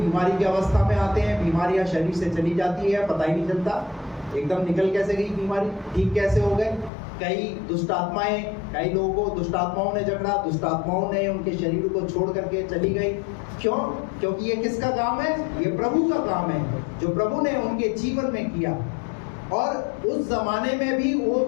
की अवस्था में आते हैं, बीमारियां शरीर से चली जाती है, पता ही नहीं चलता एकदम निकल कैसे गई बीमारी, ठीक कैसे हो गए। कई दुष्ट आत्माएं, कई लोगों को दुष्ट आत्माओं ने जकड़ा, दुष्ट आत्माओं ने उनके शरीर को छोड़ करके चली गई। क्यों? क्योंकि ये किसका काम है? ये प्रभु का काम है, जो प्रभु ने उनके जीवन में किया। और उस जमाने में भी वो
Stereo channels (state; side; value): drops out; right; at 6.9 s